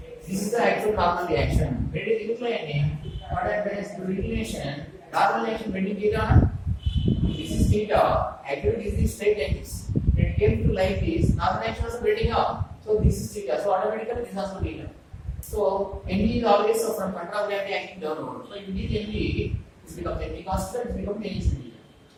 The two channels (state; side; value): identical; both; correlation 1.00